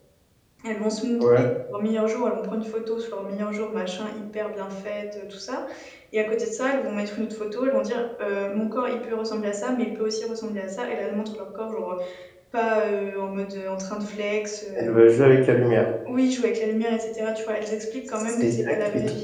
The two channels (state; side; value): identical; both; correlation 1.00